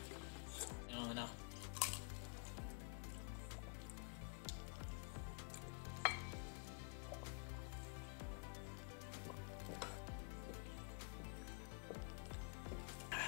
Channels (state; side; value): quieter; right; 39.1 dB